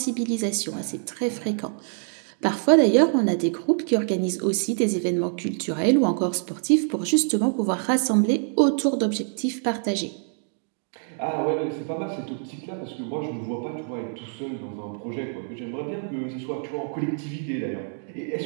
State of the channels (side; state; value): left; silent; 61 dB below the other